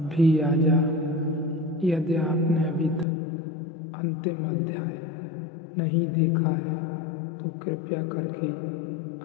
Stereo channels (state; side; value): drops out; right; at 3.1 s